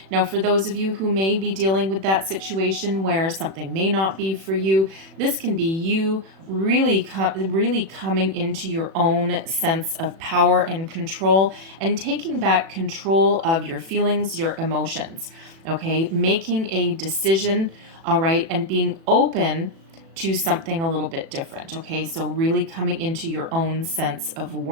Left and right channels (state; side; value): late; left; 36 ms